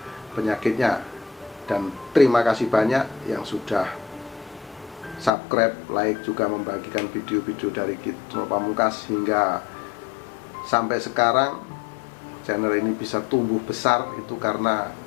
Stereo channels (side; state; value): right; drops out; at 5.3 s